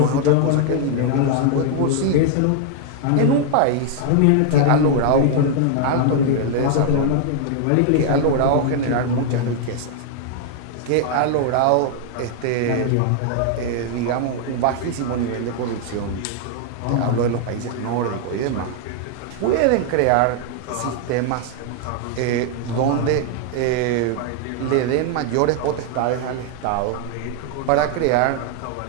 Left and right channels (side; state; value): both; different; correlation 0.00